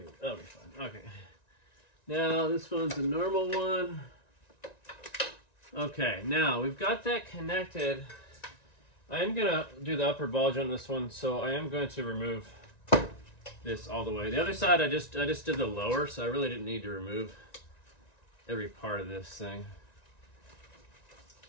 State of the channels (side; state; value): right; late; 1.9 ms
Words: fine. Okay. Now this one's a normal one. Okay, now we've got that connected. I am gonna do the upper ball joint on this one, so I am going to remove this all the way. The other side I just did the lower, so I really didn't need to remove every part of this thing.